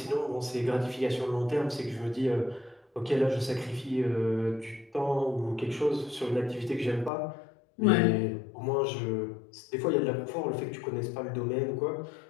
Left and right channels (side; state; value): right; drops out; at 7.1 s